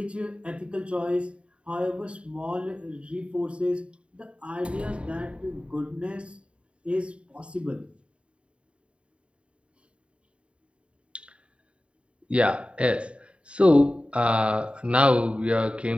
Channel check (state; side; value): late; left; 0.058 ms